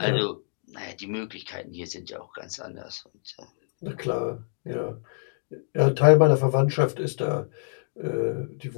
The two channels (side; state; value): right; silent; digital silence